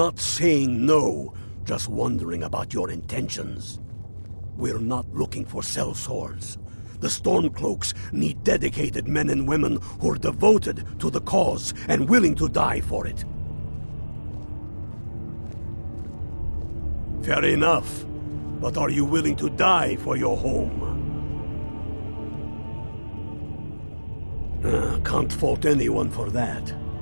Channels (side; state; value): both; inverted; correlation -1.00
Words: saying no, just wondering about your intentions. We're not looking for sellswords. The Stormcloaks need dedicated men and women who are devoted to the cause and willing to die for it. Fair enough. But are you willing to die for your home? Can't fault anyone for that.